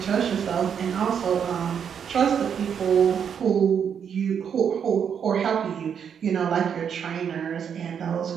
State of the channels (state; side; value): quieter; left; 7.7 dB